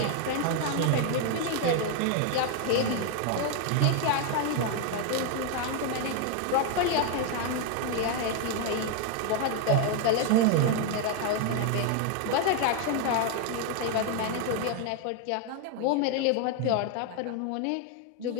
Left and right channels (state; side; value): different; both; correlation 0.01